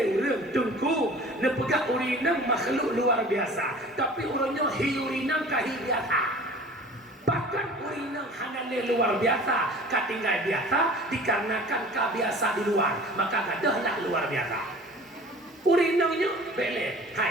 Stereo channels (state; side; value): normal; both; correlation 0.44